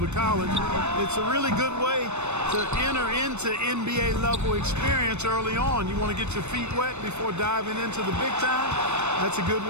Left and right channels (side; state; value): left; late; 0.82 ms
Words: college. It's a really good way to enter into NBA level experience early on. You want to get your feet wet before diving into the big time. That's a good